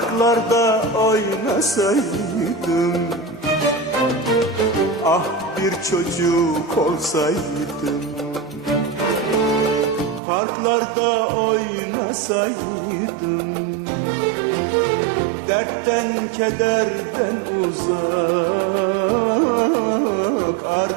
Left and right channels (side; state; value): left; drops out; at 10.2 s